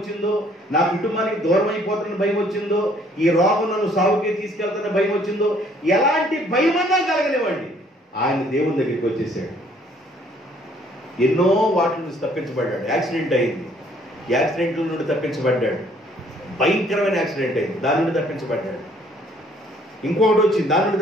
నా కుటుంబానికి దూరం అయిపోతానని భయం వచ్చిందో, ఈ రోగం నన్ను సాగుకే తీసుకెళ్తానని భయం వచ్చిందో, ఎలాంటి భయమన్నా కలగనివ్వండి, ఆయన దేవుని దగ్గరికి వచ్చేసాడు. ఎన్నో వాటి నుంచి తప్పించబడ్డాడు. యాక్సిడెంట్ అయింది, యాక్సిడెంట్ల నుండి తప్పించబడ్డాడు. భయంకరమైన యాక్సిడెంట్ అయింది, దాని నుండి తప్పించబడ్డాడు. ఇంకొకటి వచ్చింది, దాని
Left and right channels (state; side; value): normal; both; correlation 0.62